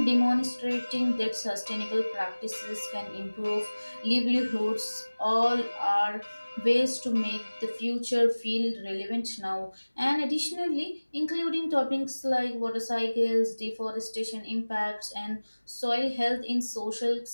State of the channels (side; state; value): both; inverted; correlation -1.00